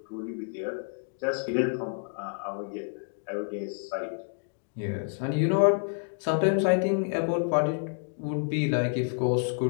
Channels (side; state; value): right; silent; digital silence